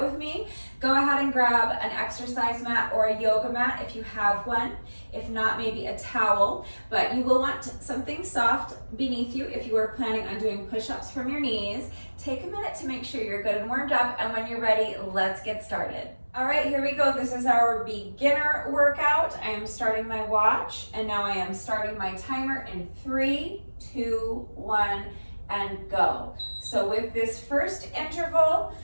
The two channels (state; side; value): inverted; both; correlation -1.00